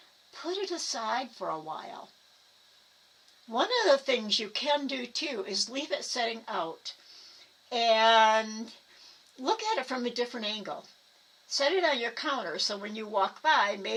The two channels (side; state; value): both; identical; correlation 1.00